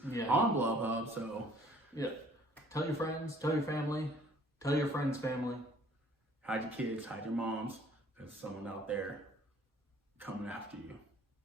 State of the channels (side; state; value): both; normal; correlation 0.57